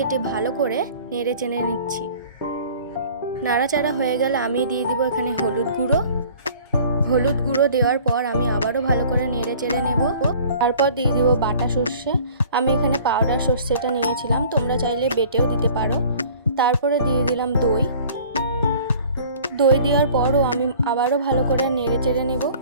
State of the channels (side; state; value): both; inverted; correlation -0.48